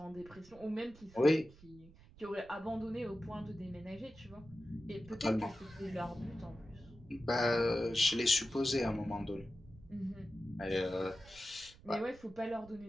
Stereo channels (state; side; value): noise; right; rumble, 21 dB below the sound